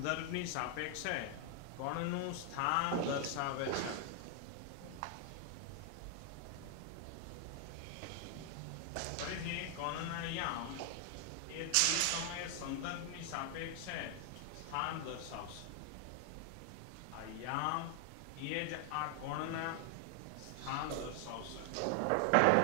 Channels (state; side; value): different; both; correlation 0.00